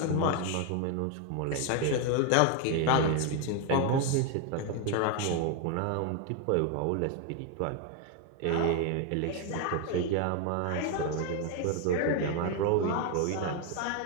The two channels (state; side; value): different; both; correlation 0.01